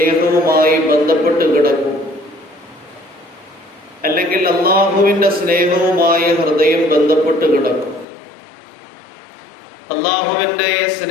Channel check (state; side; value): drops out; right; at 8.1 s